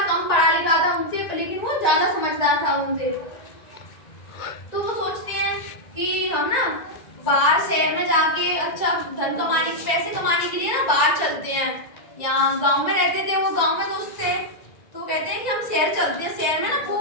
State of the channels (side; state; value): right; late; 1.9 ms